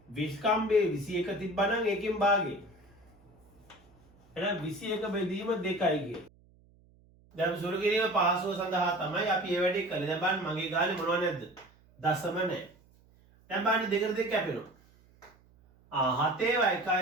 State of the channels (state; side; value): noise; right; hum, 29 dB below the sound